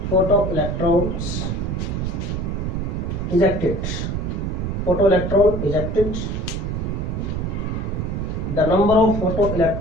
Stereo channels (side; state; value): right; noise; rumble, 2 dB below the sound